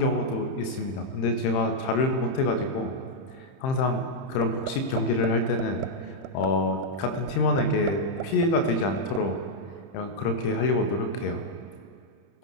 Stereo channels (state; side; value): late; right; 31 ms